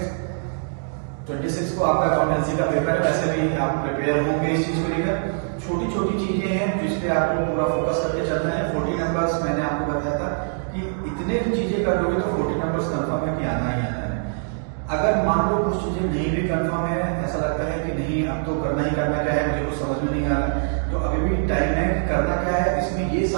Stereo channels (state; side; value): silent; left; digital silence